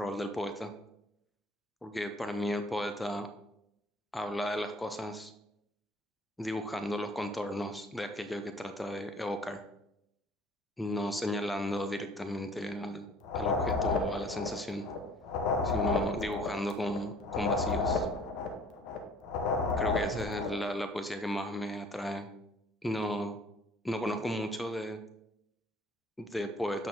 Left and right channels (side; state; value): both; normal; correlation 0.54